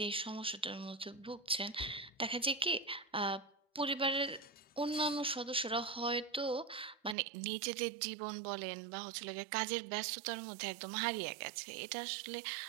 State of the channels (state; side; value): drops out; left; at 7.2 s